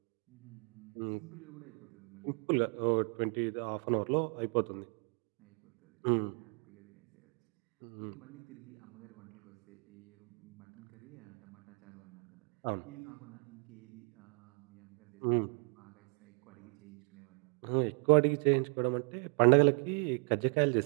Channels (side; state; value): left; quieter; 39.2 dB